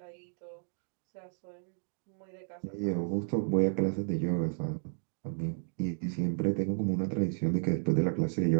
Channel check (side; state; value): left; silent; digital silence